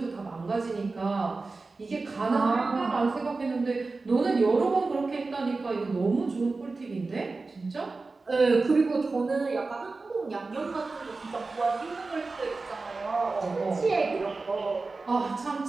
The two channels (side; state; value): left; quieter; 3.8 dB